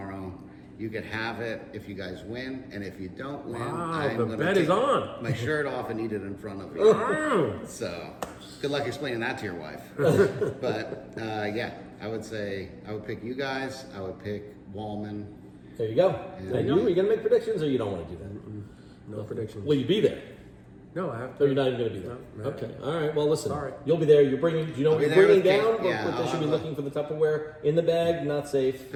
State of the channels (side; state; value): both; identical; correlation 1.00